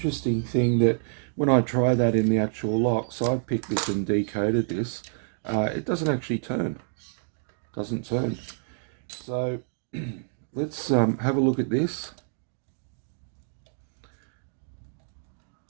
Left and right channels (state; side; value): silent; left; digital silence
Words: thing, that when I try that in the actual lock, so I've picked this and decoded this, it doesn't actually turn. Doesn't turn. So let's have a look at this.